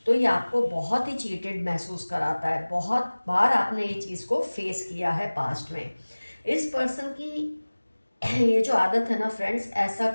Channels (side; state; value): both; inverted; correlation -1.00